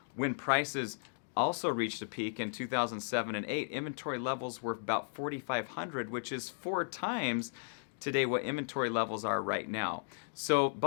when prices also reached a peak in 2007 and 8. Inventory levels were about 4,500, which is 4 times today what inventory levels are right now. So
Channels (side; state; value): right; silent; digital silence